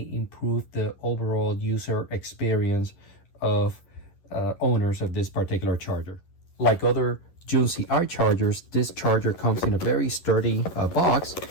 improve the overall user experience of owners of this particular charger. Like other Junsi iChargers, this charger comes in a very sturdy box,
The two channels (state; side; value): late; right; 11 ms